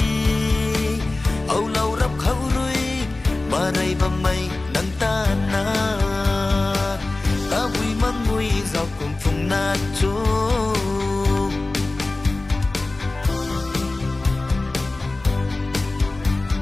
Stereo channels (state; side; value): quieter; right; 3.1 dB